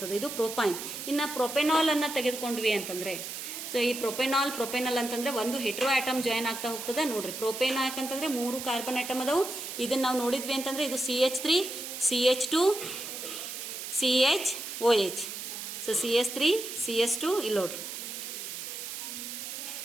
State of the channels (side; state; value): right; noise; hiss, 7 dB below the sound